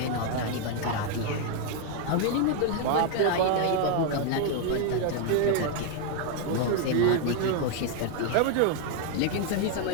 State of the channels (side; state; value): both; different; correlation 0.01